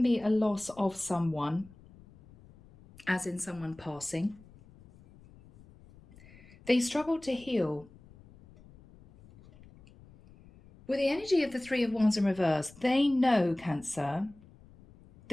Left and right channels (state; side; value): noise; left; rumble, 24 dB below the sound